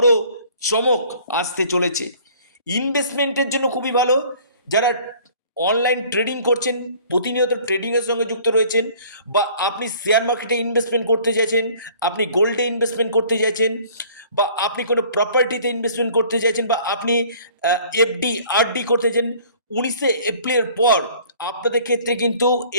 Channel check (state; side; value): inverted; both; correlation -0.53